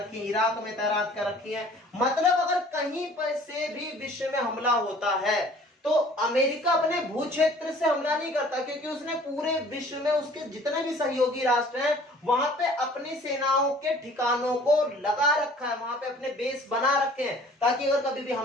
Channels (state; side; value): normal; both; correlation 0.52